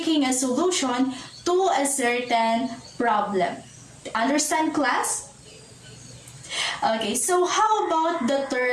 a solution to a certain problem. Understand, class? Okay, so how about the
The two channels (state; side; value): identical; both; correlation 1.00